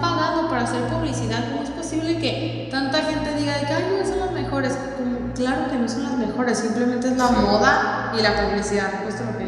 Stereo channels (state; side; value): identical; both; correlation 1.00